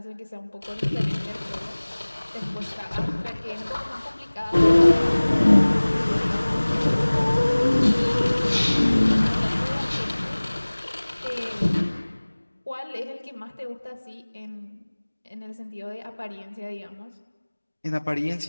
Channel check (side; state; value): both; inverted; correlation -1.00